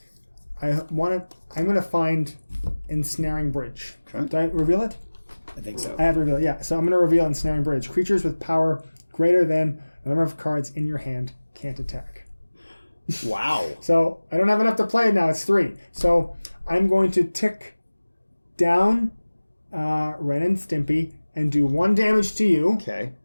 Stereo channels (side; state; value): both; inverted; correlation -1.00